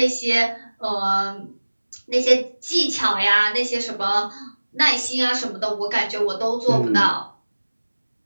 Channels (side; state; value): both; inverted; correlation -1.00